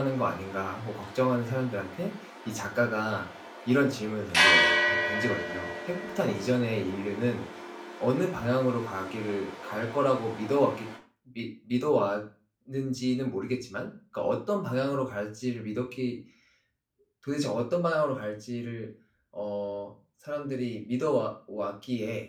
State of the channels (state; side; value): identical; both; correlation 1.00